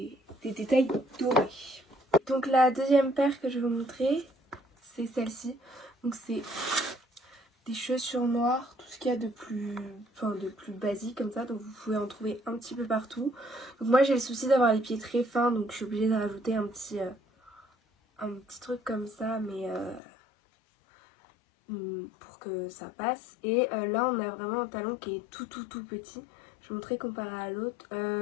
détails dorés. Donc la deuxième paire que je vais vous montrer, c'est celle-ci. Donc c'est des chaussures noires, tout ce qu'il y a de plus basique comme ça, donc vous pouvez en trouver un petit peu partout. Donc moi j'ai le souci d'avoir les pieds très fins, donc je suis obligée de rajouter un petit truc comme ça, mais pour que ça passe. Et là on a vraiment un talon qui est tout petit. Je vais vous montrer comparé à l'autre.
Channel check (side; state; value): right; drops out; at 20.0 s